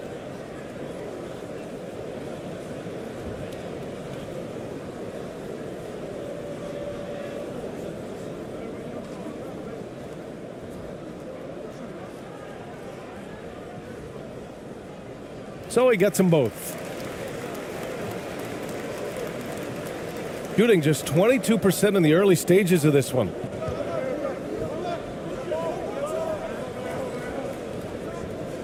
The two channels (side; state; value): both; identical; correlation 1.00